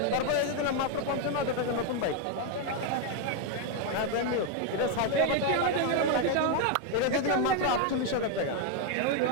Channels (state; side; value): different; both; correlation 0.01